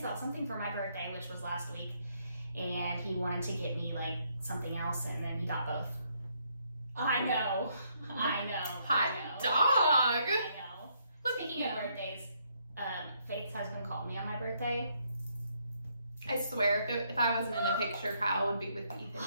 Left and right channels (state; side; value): inverted; both; correlation -0.72